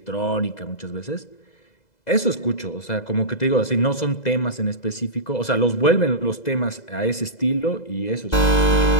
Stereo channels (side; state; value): right; late; 2.0 ms